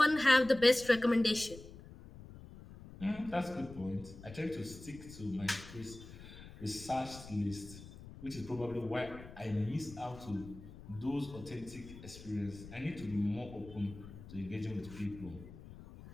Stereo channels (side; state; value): left; noise; rumble, 16 dB below the sound